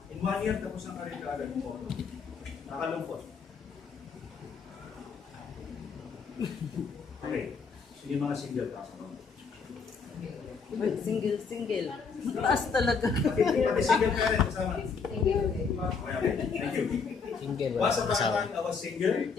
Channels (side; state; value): right; quieter; 5.4 dB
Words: in 1 year, tapos ang karir kaagad mo. Nakalungkot. Okay, so yung mga single kasi no? Single. Mataas talaga. Pati single ka rin, kasama. Okay, thank you. Single. Once upon a time, I was single.